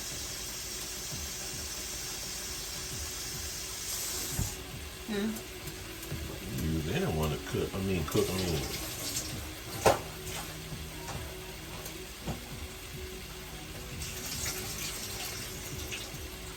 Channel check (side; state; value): both; identical; correlation 1.00